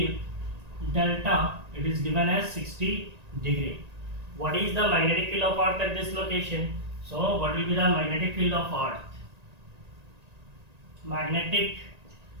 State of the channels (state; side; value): late; left; 1.9 ms